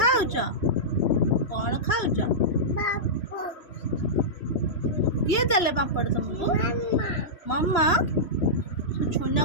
କ'ଣ ଖାଉଛ? କିଏ ଦେଲେ ପାମ୍ପଡ଼ ତମକୁ? ମାମା।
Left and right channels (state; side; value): late; right; 3.1 ms